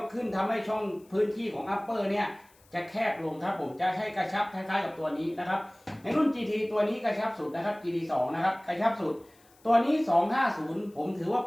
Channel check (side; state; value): left; noise; hiss, 30 dB below the sound